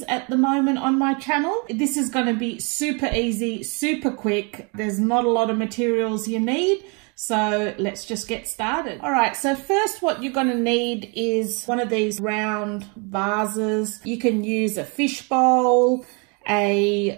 at the moment on my channel. This is going to be super easy, super quick. There's not a lot of materials you need. So let's just get started. All right, so first what you're gonna need is one of these round vases. You can use a fish bowl,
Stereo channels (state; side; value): quieter; left; 33.4 dB